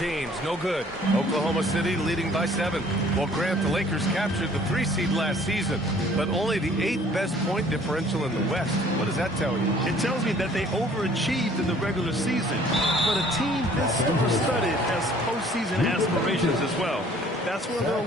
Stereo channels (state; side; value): normal; both; correlation 0.55